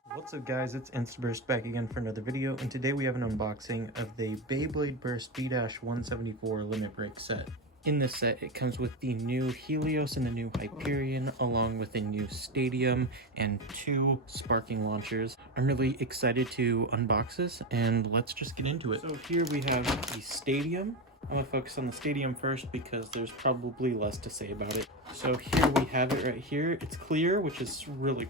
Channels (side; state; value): both; normal; correlation 0.16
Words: What's up guys, it's Instaburst back again for another video, and today we have an unboxing of the Beyblade Burst B-174 limit break set. In this set, it comes with the new Helios and the new Hyperion, along with a new Stadium and 2 sparking launchers. I'm really excited to unbox this, and let's just get into it. So here we have the Stadium. I'm going to focus on the Stadium first because there's probably less to say about it. So here we have it right here. It's clear, which is really